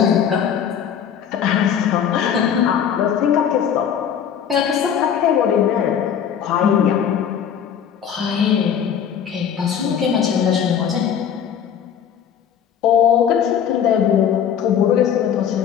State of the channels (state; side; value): quieter; right; 8.5 dB